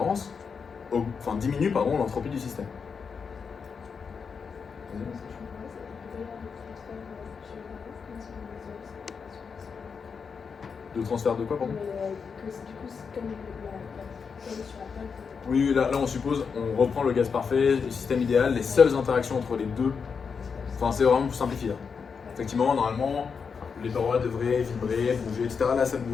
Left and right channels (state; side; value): quieter; right; 5.8 dB